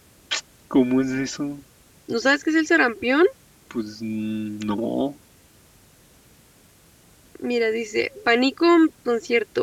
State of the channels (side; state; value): both; identical; correlation 1.00